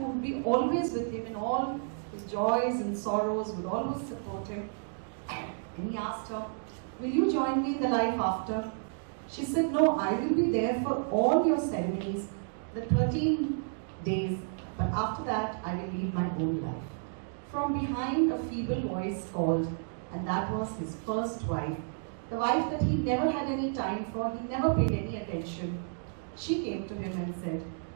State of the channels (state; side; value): silent; left; digital silence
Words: would be always with him in all his joys and sorrows, would always support him. And he asked her, will you join me in the life after? She said, no, I will be there for all your ceremonies, the 13 days, but after that, I will lead my own life. From behind, a feeble voice called, and that was his 1st wife, the wife that he never had any time for, he never paid any attention. She came to him and said,